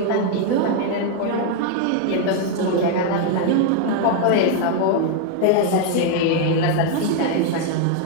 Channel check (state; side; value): different; both; correlation 0.00